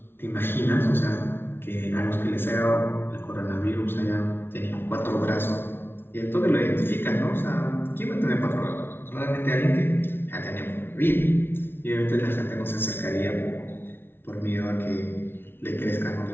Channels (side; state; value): right; late; 0.11 ms